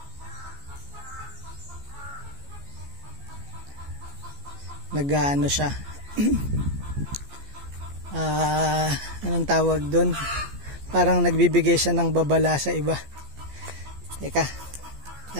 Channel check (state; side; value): late; left; 14 ms